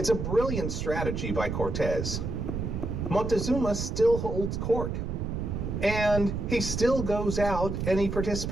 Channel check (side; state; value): right; noise; rumble, 3 dB below the sound